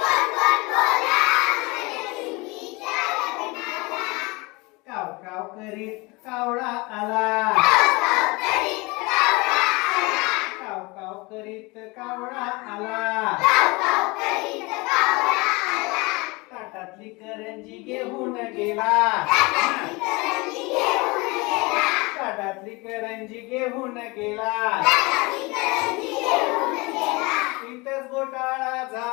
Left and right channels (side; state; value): right; quieter; 25.3 dB